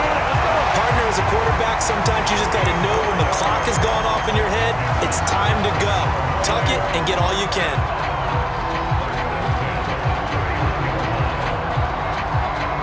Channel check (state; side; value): identical; both; correlation 1.00